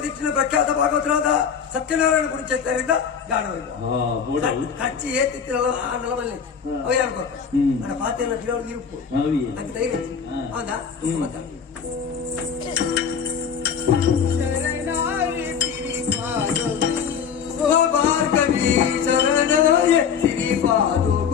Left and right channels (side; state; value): right; quieter; 7.0 dB